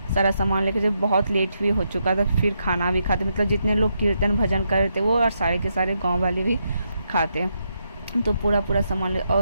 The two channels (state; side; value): inverted; both; correlation -0.81